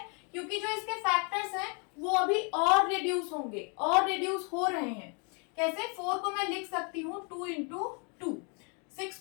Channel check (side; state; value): right; quieter; 35.8 dB